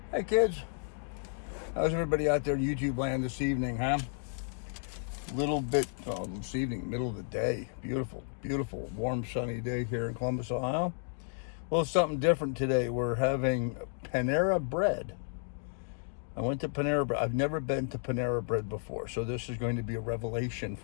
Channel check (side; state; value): right; silent; digital silence